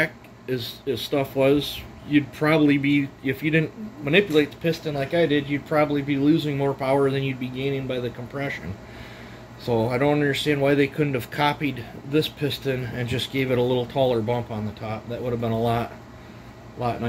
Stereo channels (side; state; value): both; identical; correlation 1.00